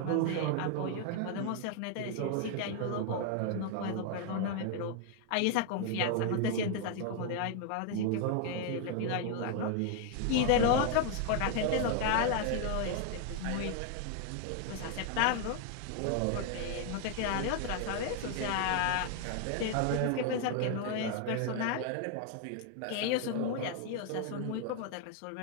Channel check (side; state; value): both; different; correlation 0.00